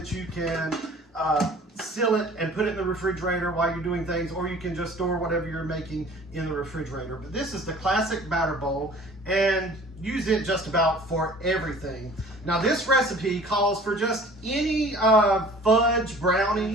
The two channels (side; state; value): both; normal; correlation 0.48